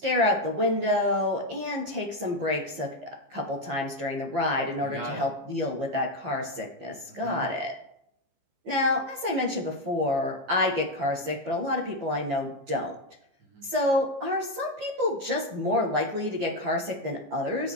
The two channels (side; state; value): left; late; 15 ms